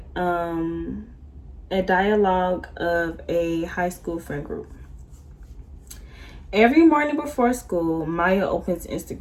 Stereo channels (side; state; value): both; identical; correlation 1.00